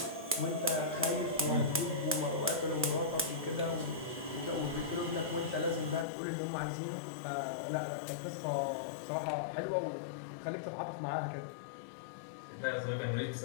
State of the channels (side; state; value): right; drops out; at 6.1 s